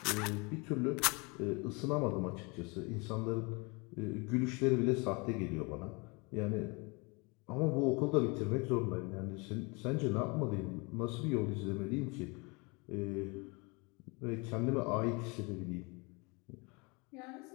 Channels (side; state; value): right; quieter; 29.0 dB